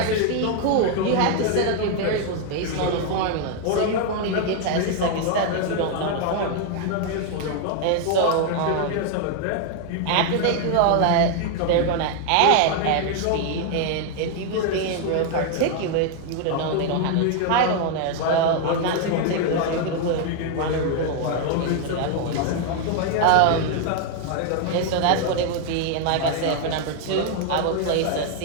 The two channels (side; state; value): both; different; correlation 0.01